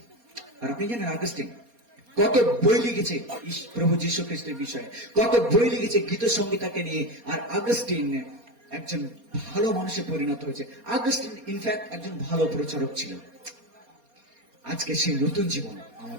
আর আপনি জানেন আগস্টিন কত বই লিখেছে প্রভু যীশু খ্রিস্টের বিষয়ে, কত বই লিখেছে গীত সংগীতাকে নিয়ে। আর আগস্টিন একজন ভালো মানুষে পরিণত হয়েছে। আগস্টিন ইনফ্যাক্ট একজন ভালো প্রচারক ছিল। আজকে সেই নতুন জীবন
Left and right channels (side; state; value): left; late; 4.2 ms